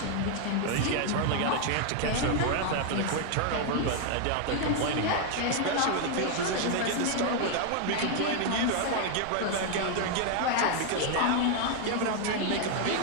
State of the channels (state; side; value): different; both; correlation 0.00